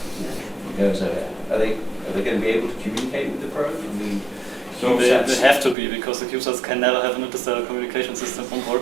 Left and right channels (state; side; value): drops out; left; at 5.8 s